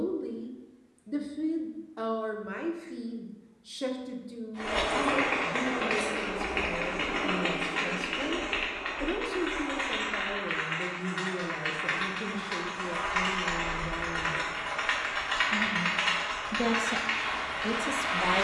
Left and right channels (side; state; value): both; identical; correlation 1.00